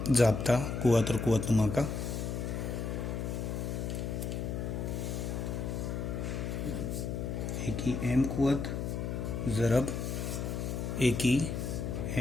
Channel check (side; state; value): left; noise; hum, 2 dB below the sound